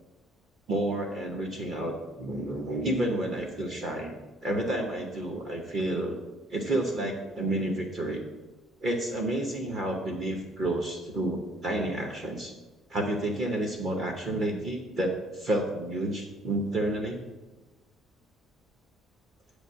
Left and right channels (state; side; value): normal; both; correlation 0.59